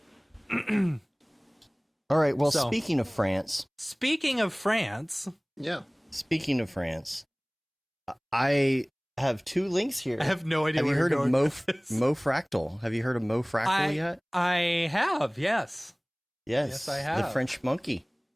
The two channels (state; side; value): identical; both; correlation 1.00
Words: All right. Well, So- speaking of France, Yeah. I have 2 links here. I have no idea Have you where heard you're of going with this. Mofractal? Have you heard of Mofractal yet? I have, yes. Yes, I have. The French monkey.